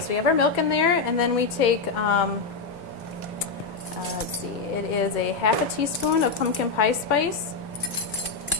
we have our milk in there, and then we take, let's see, it is a 1/2 teaspoon of pumpkin pie spice.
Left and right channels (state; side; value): quieter; right; 4.4 dB